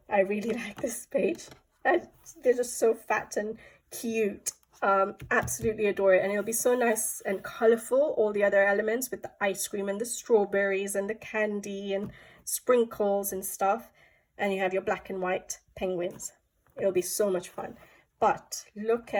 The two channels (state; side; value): identical; both; correlation 1.00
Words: I really like this page. They're just so fat and cute. Absolutely adore it, and it'll be so nice and colorful, all the other elements with the ice cream and the strawberries and the candy and sprinkles and stuff, and you have your black and white penguins. It'll be so much fun. But look